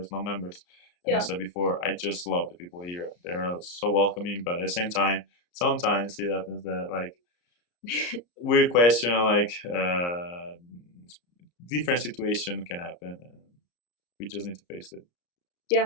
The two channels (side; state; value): right; late; 34 ms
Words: non-members. And as I said before, I just love the people here. They're so welcoming, but at the same time, sometimes it happens that like weird question, like different situation can happen, and we just need to face it.